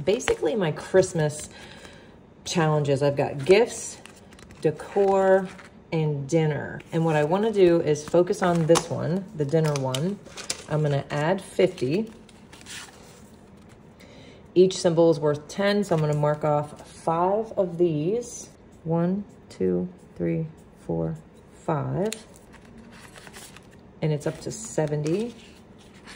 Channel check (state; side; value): identical; both; correlation 1.00